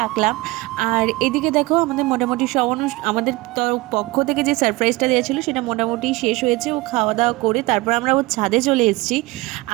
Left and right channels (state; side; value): quieter; left; 21.6 dB